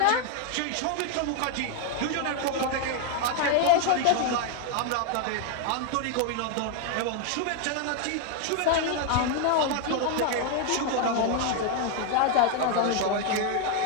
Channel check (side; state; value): both; different; correlation 0.00